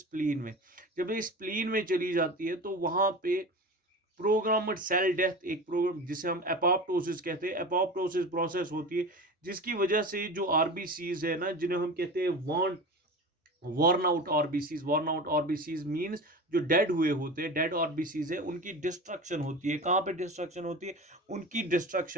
में। जब ये स्प्लीन में चली जाती है तो वहां पे प्रोग्राम्ड सेल डेथ, एक प्रोग्राम जिसे हम एपोप्टोसिस कहते हैं, एपोप्टोसिस प्रोसेस होती है, जिसकी वजह से जो आरबीसीज है ना, जिन्हें हम कहते हैं worn out RBCs. Worn out RBCs means जो डेड हुए होते हैं, डेड आरबीसीज है, उनकी डिस्ट्रक्शन होती है। कहां पे डिस्ट्रक्शन होती है? उनकी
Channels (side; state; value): both; normal; correlation 0.31